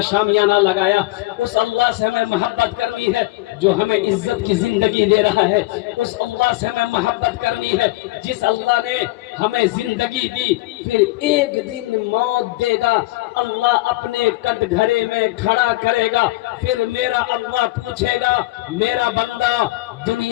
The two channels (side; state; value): right; quieter; 20.1 dB